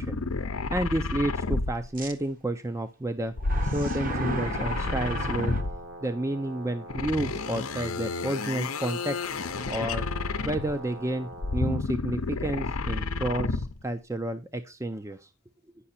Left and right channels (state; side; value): normal; both; correlation 0.65